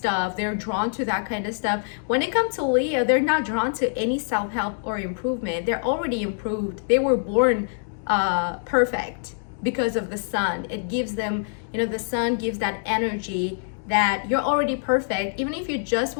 They're drawn to that kind of stuff. When it comes to Leo, they're not drawn to any self-help or improvement. They're already improved. They were born perfect because of the sun. It gives them, the sun gives that energy that you're already perfect. Even if you just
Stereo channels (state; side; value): silent; right; digital silence